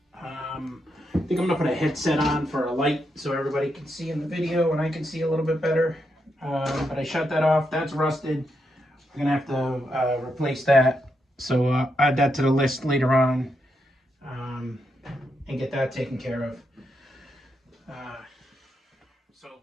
I think I'm going to put a headset on for a light so everybody can see in the video and I can see a little bit better. But I shut that off. That's rusted. We're going to have to replace that. So I'll add that to the list later on and get that taken care of. So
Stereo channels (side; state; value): both; normal; correlation 0.82